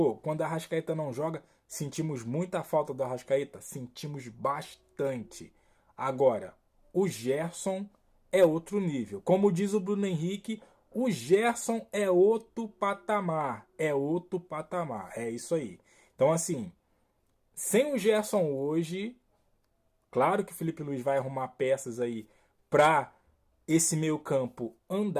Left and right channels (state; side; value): identical; both; correlation 1.00